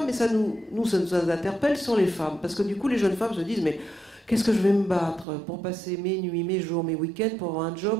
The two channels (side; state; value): left; drops out; at 5.2 s